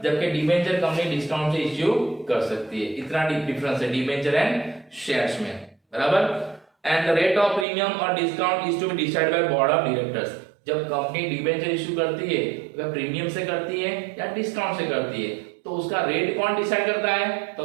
जबकि डिबेंचर कंपनी डिस्काउंट से इश्यू कर सकती है। इतना डिफरेंस है डिबेंचर एंड शेयर्स में, बराबर। And the rate of premium और discount is to be decided by board of directors. जब कंपनी डिबेंचर इश्यू करती है वह प्रीमियम से करती है या डिस्काउंट से करती है, तो उसका रेट कौन डिसाइड करता है, तो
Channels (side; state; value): left; drops out; at 7.7 s